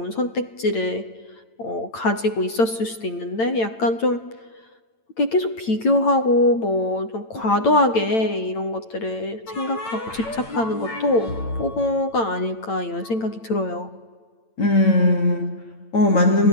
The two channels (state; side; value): late; right; 8.9 ms